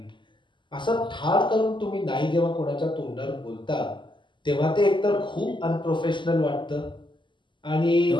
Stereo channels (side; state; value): right; late; 0.23 ms